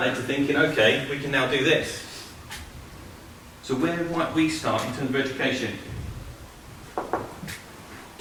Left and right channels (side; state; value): both; identical; correlation 1.00